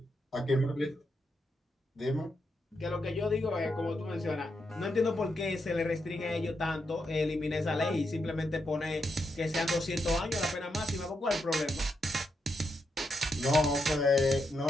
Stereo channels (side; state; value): both; normal; correlation 0.83